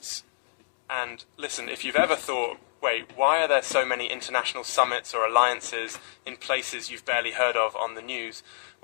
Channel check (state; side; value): silent; right; digital silence